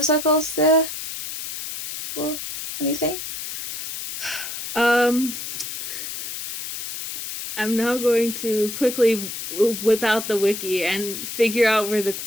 circles there or anything. Um, I'm now going to quickly whip out the wiki and figure out where the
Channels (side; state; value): left; noise; hiss, 7 dB below the sound